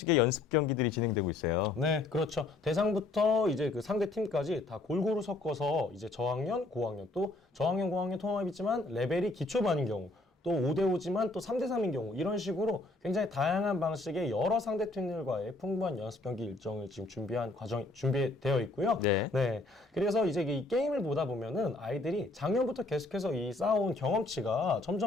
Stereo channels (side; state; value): right; quieter; 3.1 dB